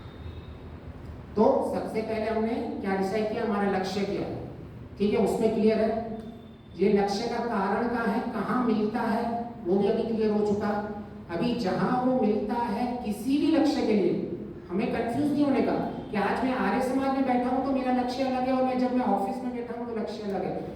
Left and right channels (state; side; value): identical; both; correlation 1.00